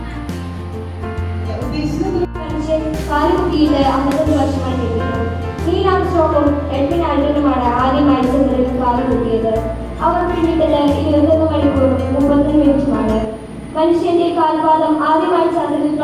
കാലുകുത്തിയിട്ട് 55 വർഷമായി നിൽക്കുന്നു. നീൽ ആംസ്ട്രോങ്ങും എഡ്വിൻ ആൽഡ്രിനുമാണ് ആദ്യമായി ചന്ദ്രനിൽ കാലുകുത്തിയത്. അവർ പിന്നിട്ടത് 21 മണിക്കൂറും 30 മിനിറ്റുമാണ്. മനുഷ്യന്റെ കാൽപാദം ആദ്യമായി ചന്ദ്രനിൽ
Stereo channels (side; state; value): both; identical; correlation 1.00